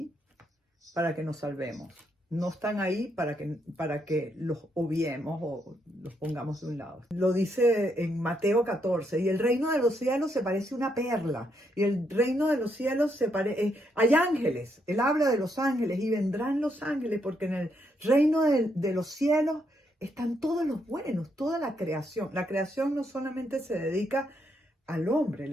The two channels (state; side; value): normal; both; correlation 0.77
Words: para que nos salvemos. No están ahí para que los obviemos o los pongamos de un lado. Lo dice en Mateo 14, y el reino de los cielos se parece a una perla, y el reino de los cielos hay ángeles, él habla de los ángeles, y vendrán los ángeles, porque en el reino de los cielos están todos los buenos, toda la creación. La creación no solamente se dedica al hombre,